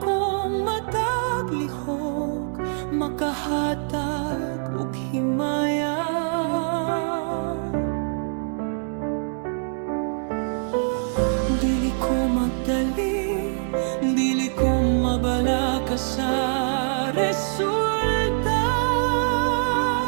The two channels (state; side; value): silent; left; digital silence